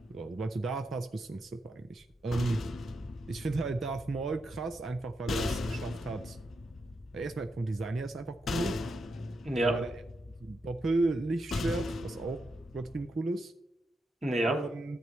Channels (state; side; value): normal; both; correlation 0.84